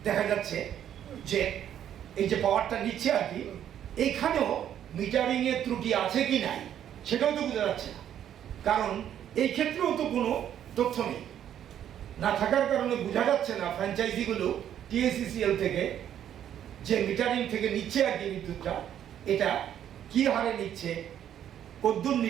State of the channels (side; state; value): left; quieter; 10.2 dB